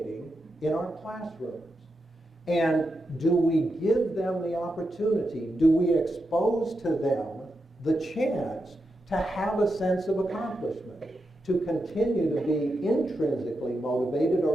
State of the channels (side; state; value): both; normal; correlation 0.87